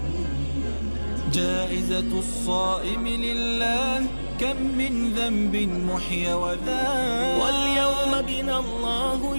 جائزة الصائم لله كم من ذنب محي وذاب واليوم بنا الله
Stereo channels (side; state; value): both; inverted; correlation -1.00